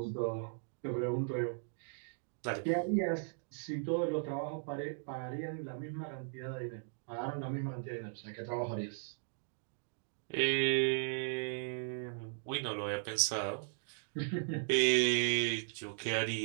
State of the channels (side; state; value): left; silent; digital silence